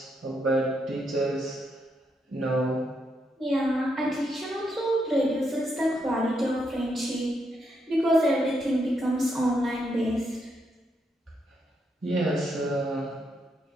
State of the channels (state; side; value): normal; both; correlation 0.79